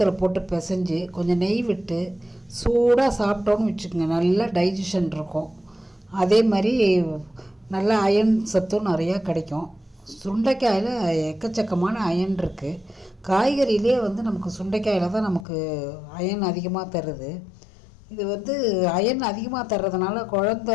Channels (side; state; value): right; drops out; at 15.5 s